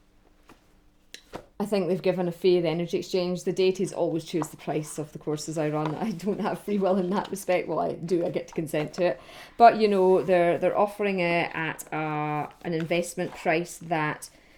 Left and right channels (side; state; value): both; identical; correlation 1.00